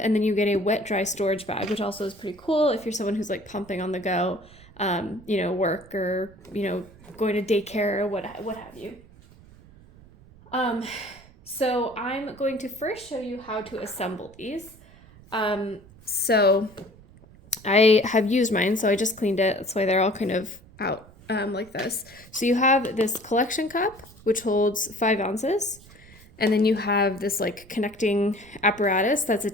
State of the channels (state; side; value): noise; right; rumble, 23 dB below the sound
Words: and then you get a wet dry storage bag, which also is pretty cool if you're someone who's like pumping on the go, work or going to daycare or what have you. So I'm going to first show you how to assemble these. So I have used mine, so I just cleaned it. That's why they're all kind of out like this. So you have this collection cup, which holds 5 ounces. And then you have this like connecting apparatus that's